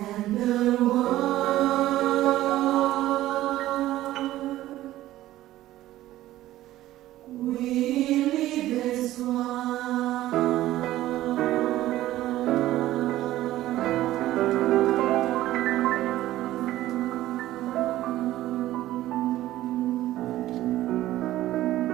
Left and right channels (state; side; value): quieter; left; 14.9 dB